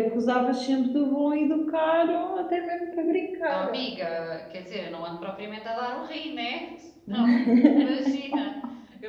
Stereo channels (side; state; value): both; identical; correlation 1.00